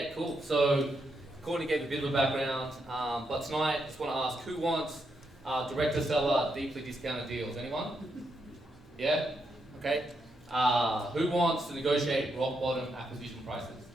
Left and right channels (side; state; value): both; normal; correlation 0.81